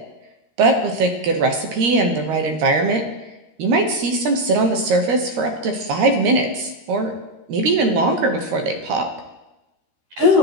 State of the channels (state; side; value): late; left; 13 ms